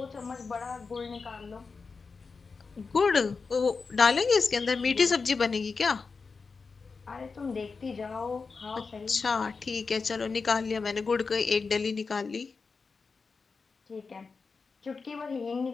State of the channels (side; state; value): right; quieter; 4.7 dB